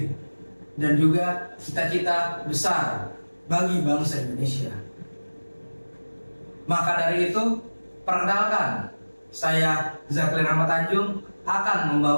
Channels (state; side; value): inverted; both; correlation -1.00